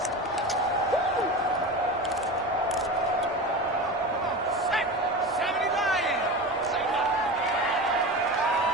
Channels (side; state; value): both; normal; correlation 0.28